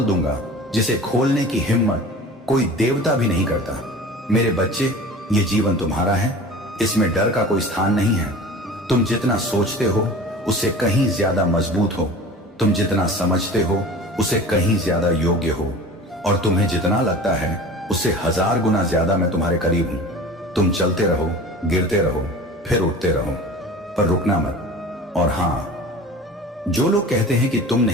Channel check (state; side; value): normal; both; correlation 0.38